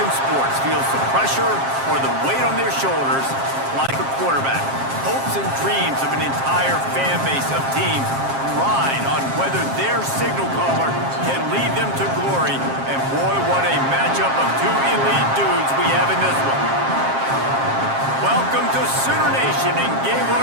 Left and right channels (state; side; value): late; left; 7.5 ms